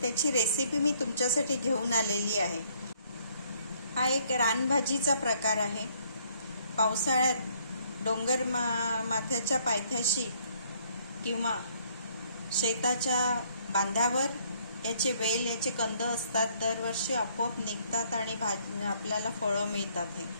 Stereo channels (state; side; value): inverted; both; correlation -0.65